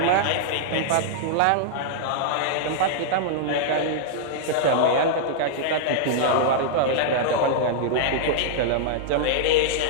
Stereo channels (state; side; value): different; both; correlation -0.01